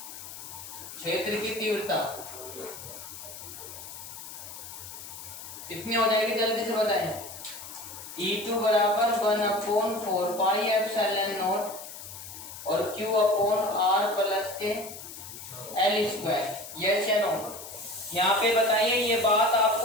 क्षेत्र की तीव्रता कितनी हो जाएगी, जल्दी से बताएं। E2 बराबर 1/4 पाई एप्सिलॉन नॉट और Q अपॉन R प्लस के L²। यस या नो? यहाँ पे बताइए ये बात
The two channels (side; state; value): left; noise; hiss, 12 dB below the sound